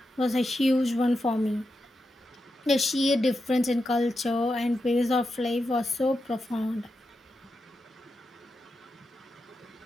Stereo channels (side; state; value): both; normal; correlation 0.88